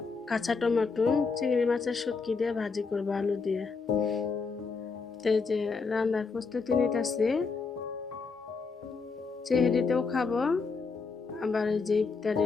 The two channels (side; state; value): right; quieter; 4.7 dB